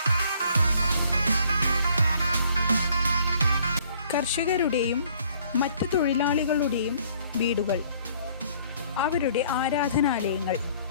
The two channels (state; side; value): inverted; both; correlation -0.60